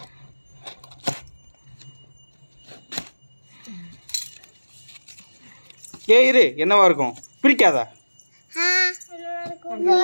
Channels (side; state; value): both; inverted; correlation -1.00